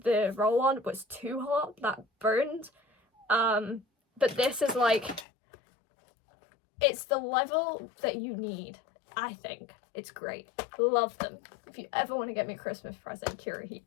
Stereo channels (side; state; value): right; drops out; at 5.2 s